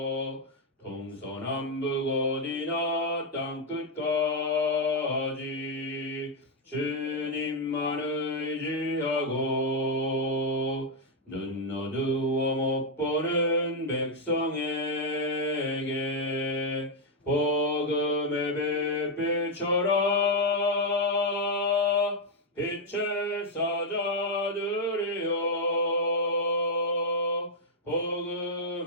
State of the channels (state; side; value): normal; both; correlation -0.01